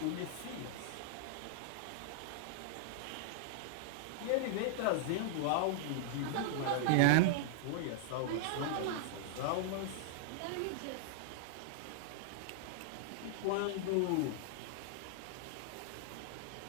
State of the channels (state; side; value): different; both; correlation -0.01